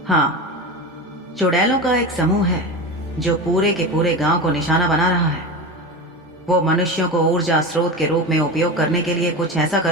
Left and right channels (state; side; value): normal; both; correlation 0.25